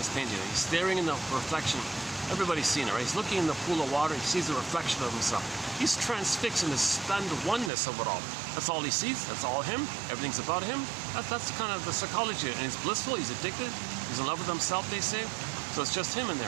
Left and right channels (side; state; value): left; drops out; at 7.7 s